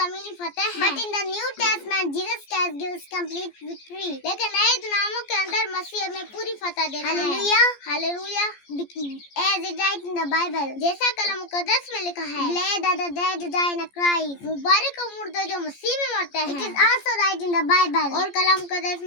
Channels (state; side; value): late; right; 14 ms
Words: फतेह है। But in the New Testament, Jesus Christ gives complete victory. लेकिन नए ड्रामों के अंदर मसीह हमें पूरी फतेह देता है। Hallelujah, Hallelujah. As it writes in the Bible, जैसा कलाम मुकद्दस में लिखा है, Glad are the dead who die in Christ. मुबारक हो मुर्दे जो मसीह में मरते हैं। It is also right in the Bible. और कलाम मुकद्दस